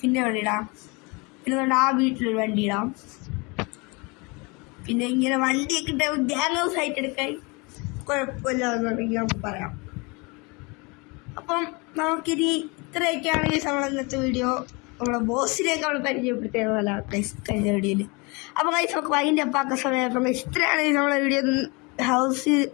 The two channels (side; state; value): right; quieter; 28.2 dB